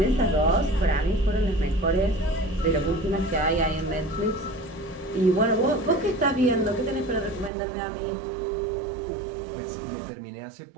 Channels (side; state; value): left; drops out; at 7.5 s